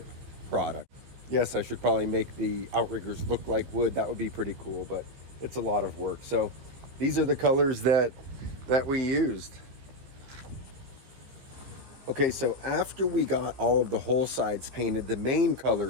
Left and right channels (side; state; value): left; late; 15 ms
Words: product. Yes, I should probably make the outriggers look like wood. That would be pretty cool, but it's a lot of work. So these are the colors that we used. Okay, so after we got all of the hull sides painted, the main color